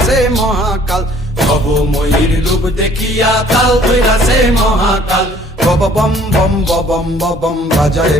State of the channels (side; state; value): both; normal; correlation 0.56